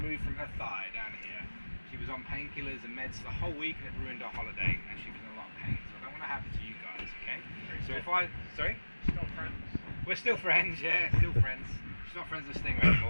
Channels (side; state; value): both; inverted; correlation -1.00